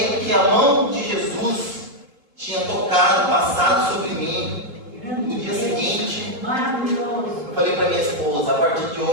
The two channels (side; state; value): left; late; 3.7 ms